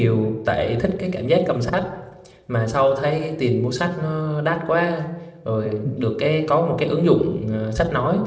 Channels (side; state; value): both; identical; correlation 1.00